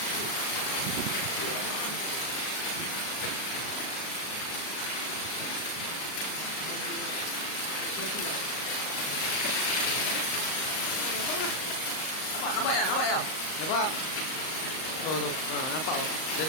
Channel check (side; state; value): right; late; 38 ms